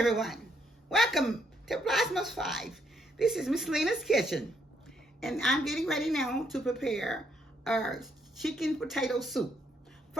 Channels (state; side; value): normal; both; correlation 0.73